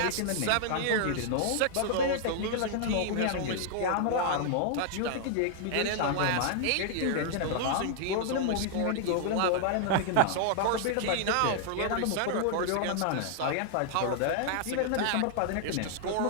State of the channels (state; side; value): different; both; correlation -0.01